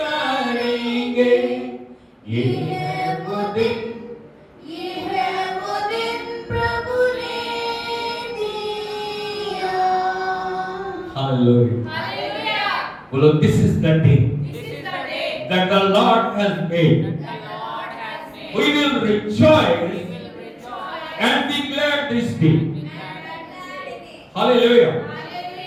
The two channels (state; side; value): identical; both; correlation 1.00